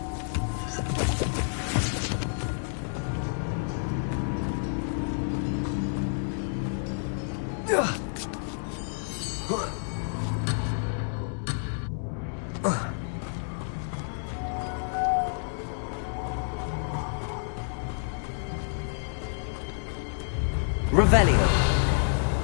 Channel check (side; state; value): right; silent; digital silence